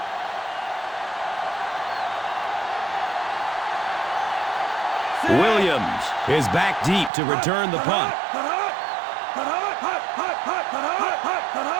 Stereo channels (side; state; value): left; drops out; at 7.1 s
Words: Williams is back deep to return the punt.